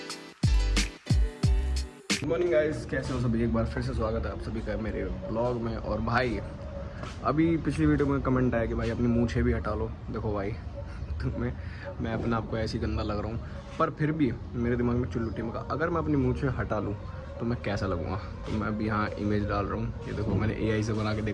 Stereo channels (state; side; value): identical; both; correlation 1.00